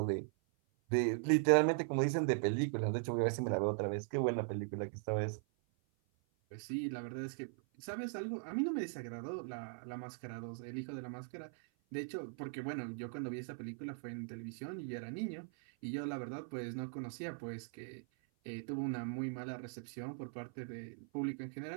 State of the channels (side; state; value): left; silent; 51 dB below the other